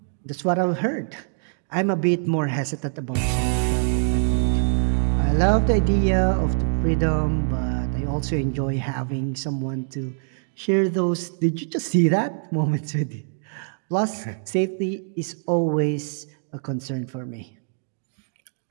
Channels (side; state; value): left; silent; digital silence